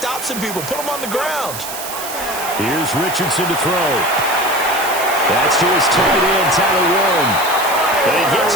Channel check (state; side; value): noise; right; hiss, 9 dB below the sound